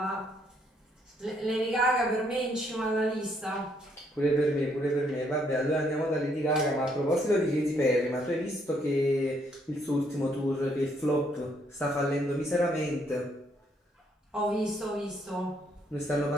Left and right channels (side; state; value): both; normal; correlation 0.71